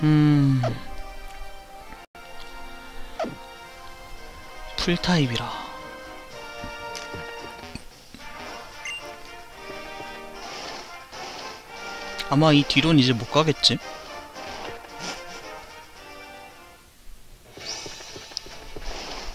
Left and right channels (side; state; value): both; identical; correlation 1.00